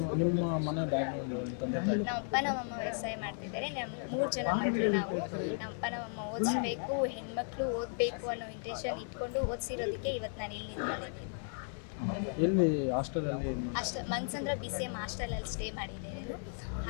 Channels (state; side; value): silent; right; 54 dB below the other